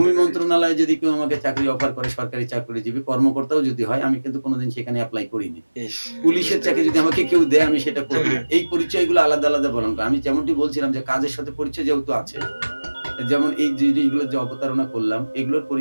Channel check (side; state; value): both; inverted; correlation -1.00